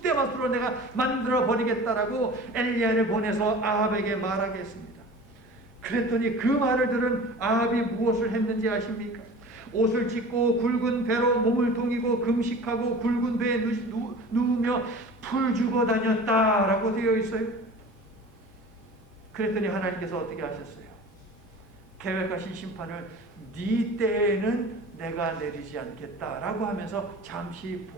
내가 만들어 버리겠다라고 엘리야를 보내서 아합에게 말하게 했습니다. 그랬더니 그 말을 들은 아합이 무엇을 했는지 아십니까? 옷을 찢고 굵은 배로 몸을 동이고 금식하고 굵은 배에 누우며 풀 주고 다녔다라고 되어 있어요. 그랬더니 하나님께서 어떻게 하셨어요? 계획하신 심판을 네 때에는 내가 내리지 않겠다라고 하면서 잠시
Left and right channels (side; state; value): both; normal; correlation 0.39